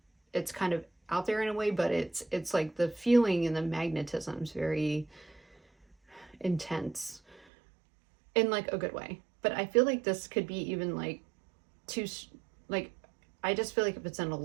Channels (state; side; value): drops out; left; at 7.5 s